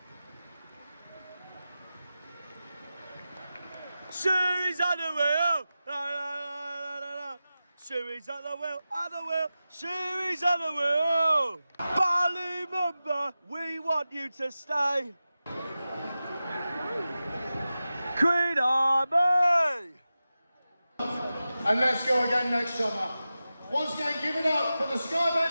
Shoes on the wheel! La, la, la, la, la, la. Shoey's at the wheel, at the wheel. Shoey's at the wheel. Ballymumba, we want you to stay. Queen Army. And let's go again next summer. Once again, give it up for the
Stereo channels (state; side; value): inverted; both; correlation -0.94